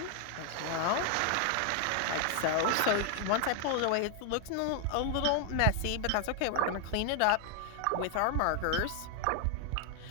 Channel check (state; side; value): different; both; correlation 0.00